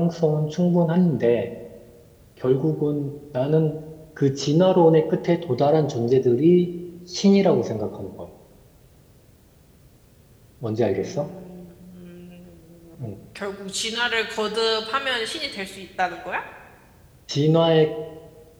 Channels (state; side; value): identical; both; correlation 1.00